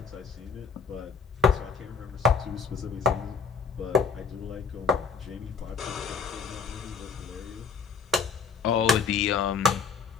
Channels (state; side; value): quieter; right; 5.4 dB